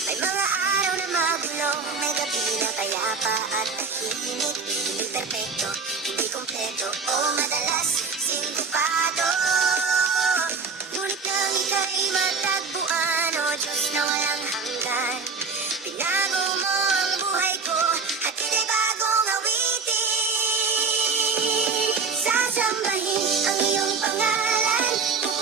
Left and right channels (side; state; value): left; quieter; 4.8 dB